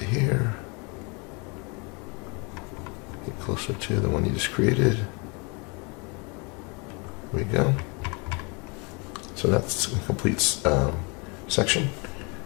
here. Get closer to the one you just created. There we go. So that's a complete section.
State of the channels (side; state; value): right; quieter; 31.5 dB